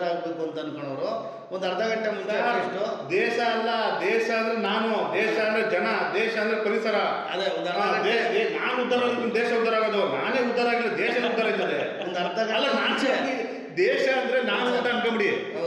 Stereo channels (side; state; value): both; identical; correlation 1.00